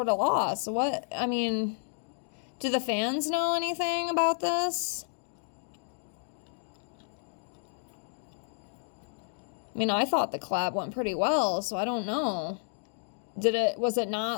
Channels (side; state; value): right; silent; digital silence